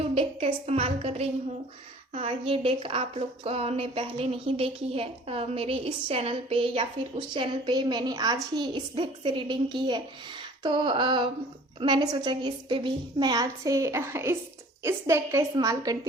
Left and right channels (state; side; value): normal; both; correlation 0.49